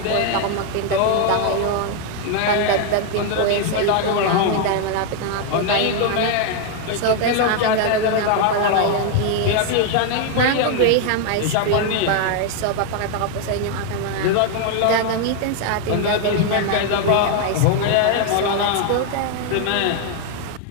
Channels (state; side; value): different; both; correlation 0.00